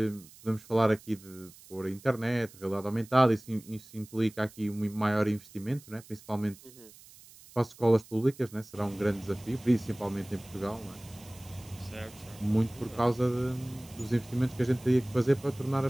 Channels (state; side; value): noise; right; hiss, 22 dB below the sound